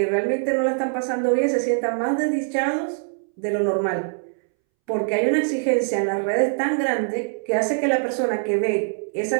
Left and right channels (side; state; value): left; silent; 63 dB below the other